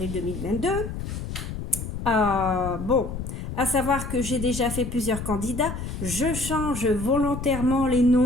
2022. Bon, à savoir que j'ai déjà fait plusieurs candidats. Je change volontairement les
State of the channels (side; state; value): left; noise; rumble, 6 dB below the sound